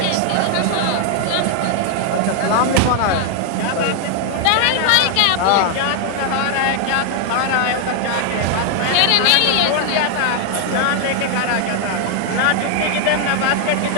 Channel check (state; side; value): different; both; correlation 0.00